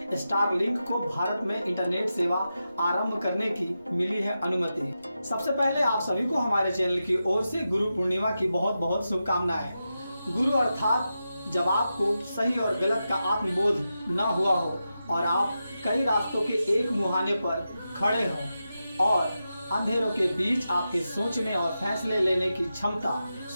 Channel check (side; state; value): both; inverted; correlation -0.90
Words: स्टारलिंक को भारत में इंटरनेट सेवा आरंभ करने की मिली है अनुमति। सबसे पहले आप सभी को हमारे चैनल की ओर से गुरु पूर्णिमा की बहुत बहुत शुभकामनाएं। गुरु अर्थात जब आपको सही और गलत का आत्मबोध न हुआ हो और आप कई रास्तों के एक मुहाने पर खड़े हों और अंधेरों के बीच आपके सोचने और फैसले लेने की क्षमता